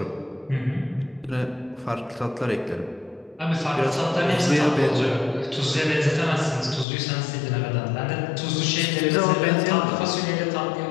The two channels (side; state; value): right; drops out; at 6.9 s